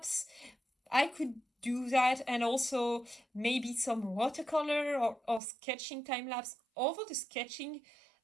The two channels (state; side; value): drops out; left; at 5.4 s